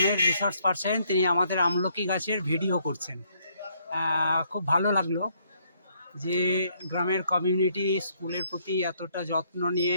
রিসোর্স পার্সন তিনি আমাদের আমলকি গাছের ভিডিও করছেন। খুব ভালো লাগলো যে গ্রামের কমিউনিটি স্কুলের প্রতি এতটা যত্ন নিয়ে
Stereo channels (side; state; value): both; inverted; correlation -0.69